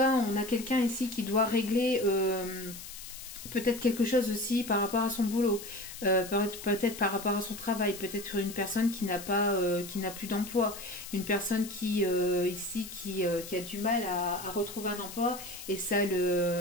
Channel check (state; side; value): noise; left; hiss, 12 dB below the sound